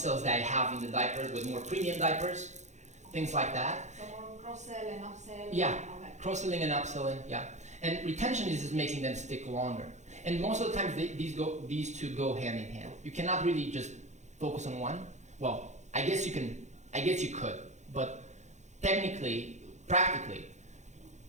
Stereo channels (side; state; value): left; late; 0.34 ms